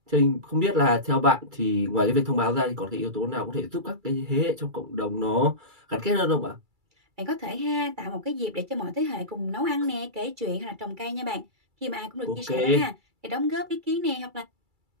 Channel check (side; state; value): left; late; 2.3 ms